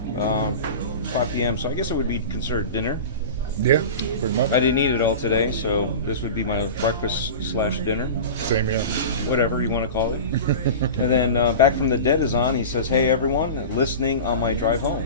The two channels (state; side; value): inverted; both; correlation -0.31